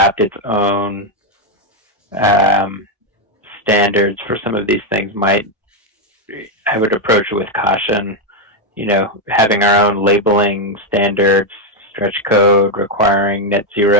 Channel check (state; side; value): normal; both; correlation 0.04